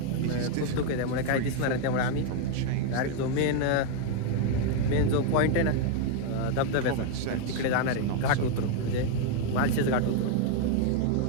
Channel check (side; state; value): both; different; correlation 0.01